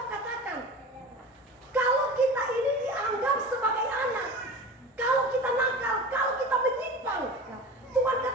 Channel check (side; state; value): both; normal; correlation 0.34